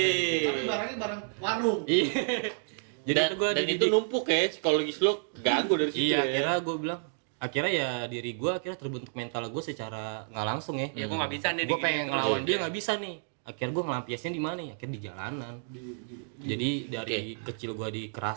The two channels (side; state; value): left; silent; digital silence